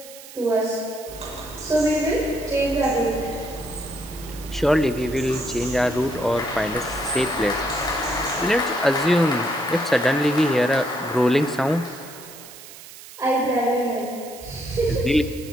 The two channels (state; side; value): noise; right; hiss, 17 dB below the sound